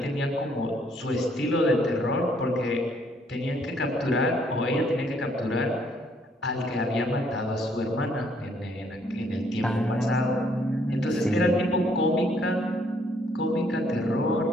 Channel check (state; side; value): normal; both; correlation 0.67